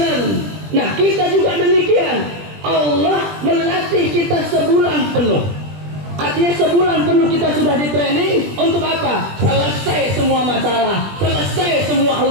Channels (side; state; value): left; late; 20 ms